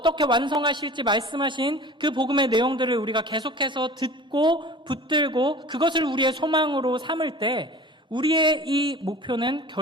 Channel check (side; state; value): both; normal; correlation 0.40